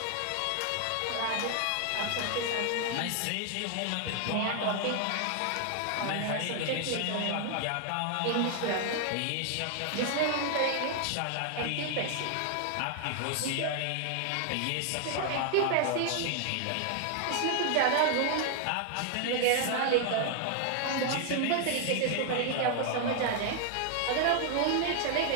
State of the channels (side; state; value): both; different; correlation 0.00